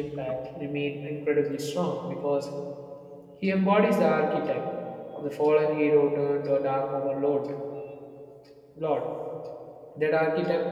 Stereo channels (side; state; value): both; identical; correlation 1.00